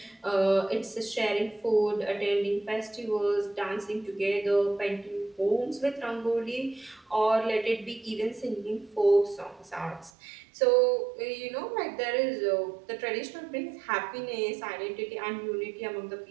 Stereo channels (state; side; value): drops out; left; at 10.1 s